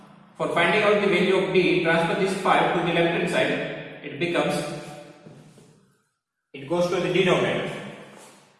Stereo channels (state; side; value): identical; both; correlation 1.00